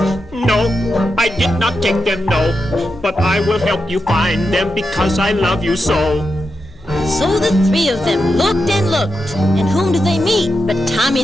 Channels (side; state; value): both; normal; correlation 0.87